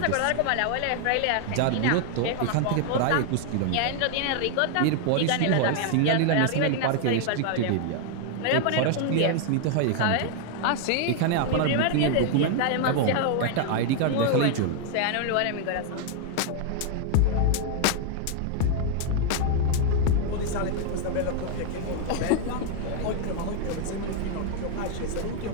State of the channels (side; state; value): both; different; correlation 0.00